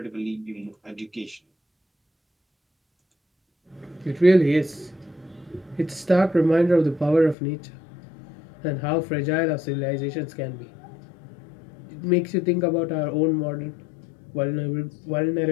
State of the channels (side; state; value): right; drops out; at 7.4 s